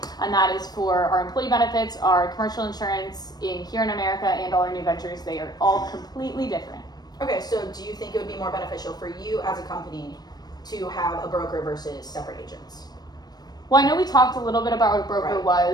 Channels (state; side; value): late; right; 0.19 ms